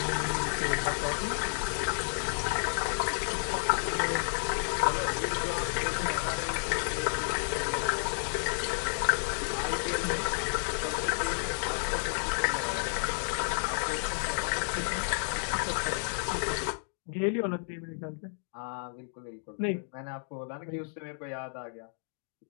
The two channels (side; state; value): right; silent; digital silence